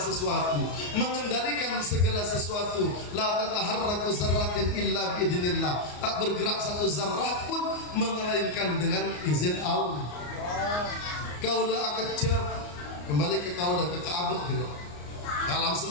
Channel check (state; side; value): late; right; 34 ms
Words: mengendalikan segala sesuatu. La tataharraku zarratin illa biidznillah. Tak bergerak satu zarrah pun melainkan dengan izin Allah. Kaulah kecap kembali ke kaulah ke Ka'bah gitu. Alam